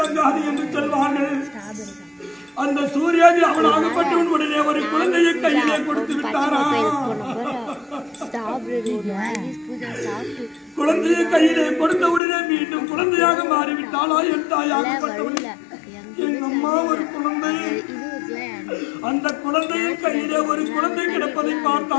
என்று சொல்வார்கள். அந்த சூர்யாதி அவனாகப்பட்டவன் உடனே ஒரு குழந்தையை கையிலே கொடுத்து விட்டாரா. குழந்தையை கையிலே கொடுத்த உடனே மீண்டும் குழந்தையாக மாறிவிட்டாளா என் தாயாகப்பட்டவன். என் அம்மா ஒரு குழந்தை, அந்த குழந்தையின் கையிலே ஒரு குழந்தை கிடப்பதை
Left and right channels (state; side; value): drops out; right; at 12.2 s